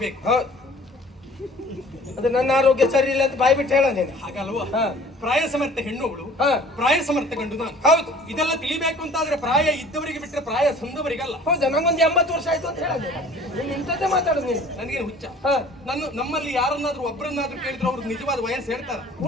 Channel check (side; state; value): both; normal; correlation 0.49